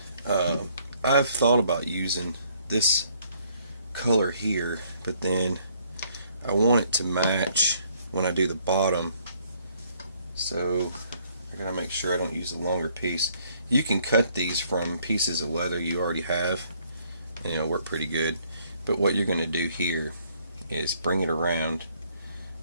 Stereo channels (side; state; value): both; inverted; correlation -0.65